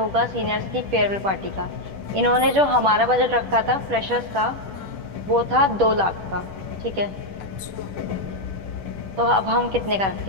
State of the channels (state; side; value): late; left; 10 ms